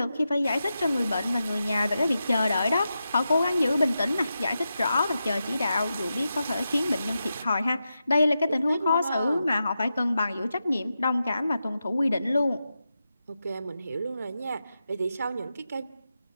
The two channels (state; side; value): inverted; both; correlation -0.89